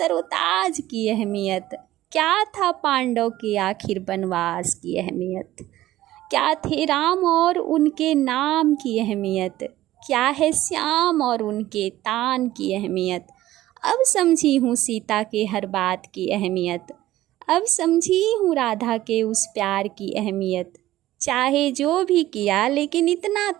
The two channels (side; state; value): left; quieter; 15.1 dB